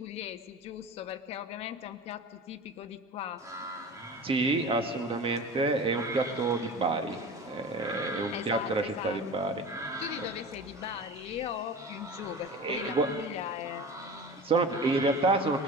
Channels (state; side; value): normal; both; correlation 0.34